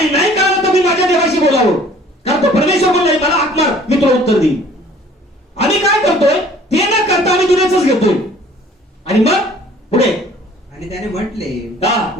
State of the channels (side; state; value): both; normal; correlation 0.53